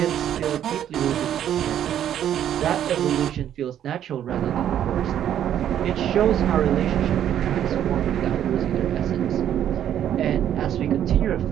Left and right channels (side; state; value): left; quieter; 10.4 dB